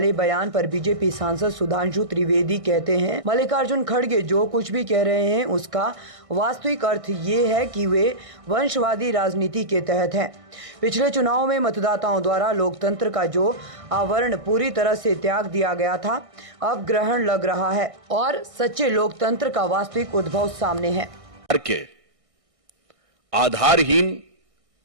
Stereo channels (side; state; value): left; late; 1.6 ms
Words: बयान पर बीजेपी सांसद सुधांशु त्रिवेदी कहते हैं, मल्लिकार्जुन खड़गे जो कुछ भी कह रहे हैं उसका वास्तविक अर्थ ये है कि वे वंशवादी राजनीति के तहत हैं। पिछले चुनाव में मतदाताओं द्वारा लोकतंत्र का जो आवरण पूरी तरह से त्याग दिया गया था, अब ग्रहण लग रहा है और सच्चे लोकतंत्र का वास्तविक उद्भव सामने है। आधारहीन